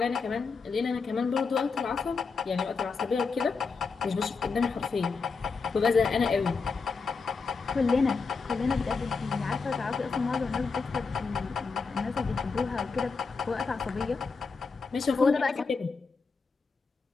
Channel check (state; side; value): quieter; right; 4.8 dB